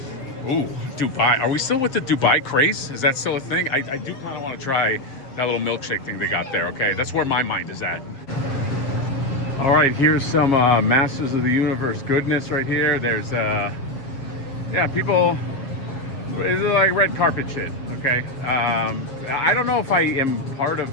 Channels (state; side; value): late; right; 7.3 ms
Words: Ooh, Dubai. Are we still with the Dubai craze? Is that still a thing? I do kind of want to try that little milkshake thing they got there, okay? That's where my mind is at. All right, here's some Masters of the Universe goodness right here. There's, yeah, people, it's like red carpet shit, okay? I don't know if I am part